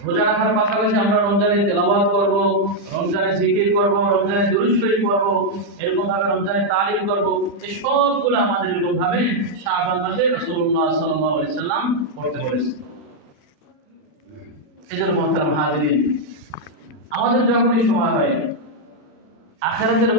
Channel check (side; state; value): left; late; 40 ms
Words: রোজা রাখার পাশাপাশি আমরা রমজানে তেলাওয়াত করব, রমজানে জিকির করব, রমজানে দুরূদ শরীফ করব, এরকম ভাবে রমজানে তালিম করব, এই সবগুলো আমাদের এরকম ভাবে শাবান মাসে রাসূলুল্লাহ সাল্লাল্লাহু আলাইহি সাল্লাম করতে বলেছেন। এজন্য মুহতারাম হাজিরিন, আমাদের যখনই সময় হয় আখিরাতের